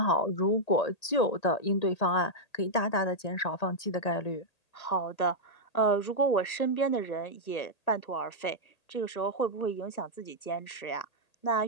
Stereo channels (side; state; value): right; late; 1.8 ms